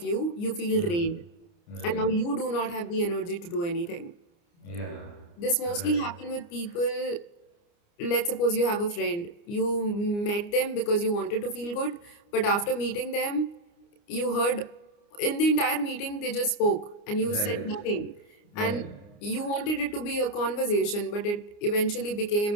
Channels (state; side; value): late; right; 29 ms